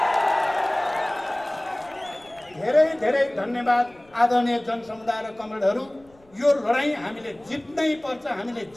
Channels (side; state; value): left; noise; rumble, 30 dB below the sound